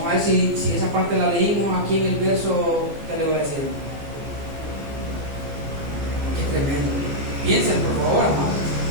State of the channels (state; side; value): late; left; 14 ms